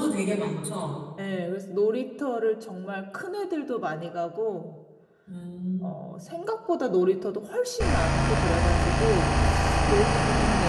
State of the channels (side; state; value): both; identical; correlation 1.00